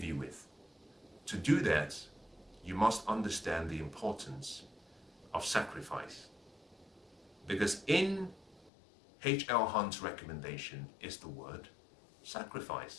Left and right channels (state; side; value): drops out; right; at 8.7 s